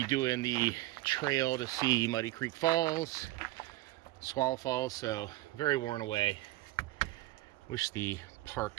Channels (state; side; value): quieter; left; 17.7 dB